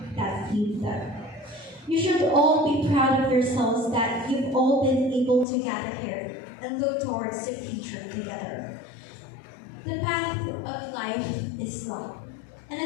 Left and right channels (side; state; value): right; drops out; at 5.5 s